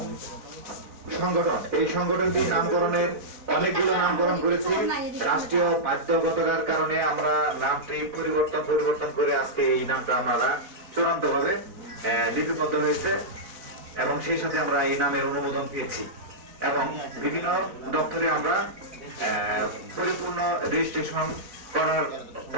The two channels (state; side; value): late; left; 4.0 ms